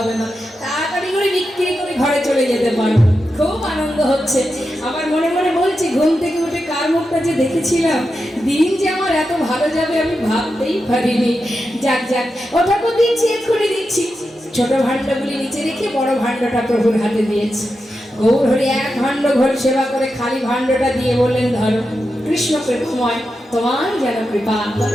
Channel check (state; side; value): normal; both; correlation 0.89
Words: না, তাড়াতাড়ি করে বিক্রি করে ঘরে চলে যেতে পারবো। খুব আনন্দ হচ্ছে। আবার মনে মনে বলছি, ঘুম থেকে উঠে কার মুখটা যে দেখেছিলাম, দিন যে আমার এত ভালো যাবে আমি ভাবতেই পারিনি। যাক যাক, ও ঠাকুর দিচ্ছি, এক্ষুনি দিচ্ছি। ছোট ভাণ্ডগুলি নিচে রেখে বড় ভাণ্ডটা প্রভুর হাতে দিয়েছে। গৌরহরি এক ভাণ্ড ঘোল সেবা করে খালি ভাণ্ডটা দিয়ে বললেন, ধরো, কৃষ্ণ কৃপাময়, তোমার যেন কৃপা